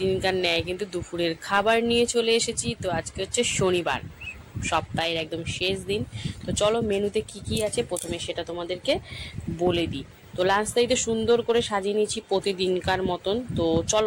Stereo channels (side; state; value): both; identical; correlation 1.00